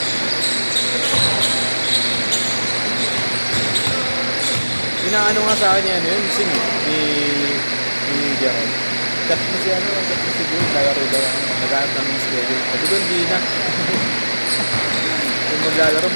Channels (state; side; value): inverted; both; correlation -1.00